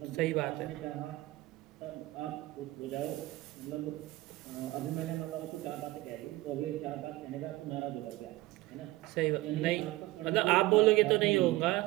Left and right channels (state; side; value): quieter; left; 18.6 dB